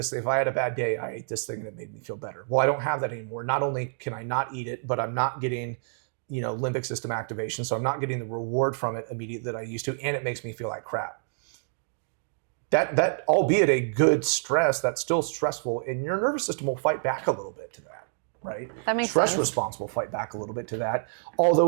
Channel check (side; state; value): left; silent; digital silence